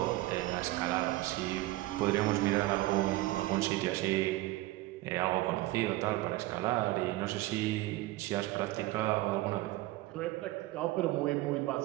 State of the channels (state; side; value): quieter; left; 18.2 dB